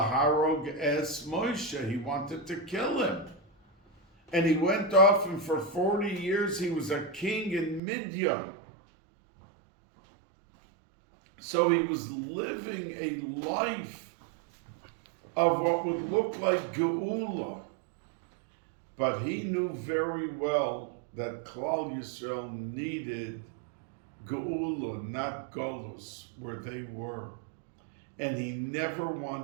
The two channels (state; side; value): drops out; left; at 7.8 s